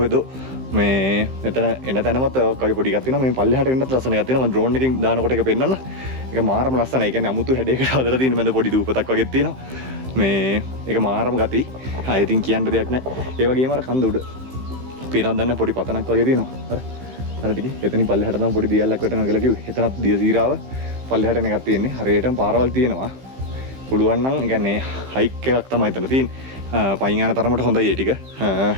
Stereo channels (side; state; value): left; late; 15 ms